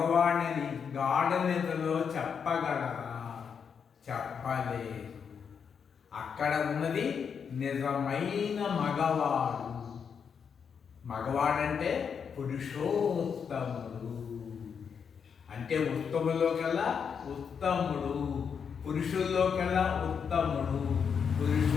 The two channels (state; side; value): quieter; right; 6.8 dB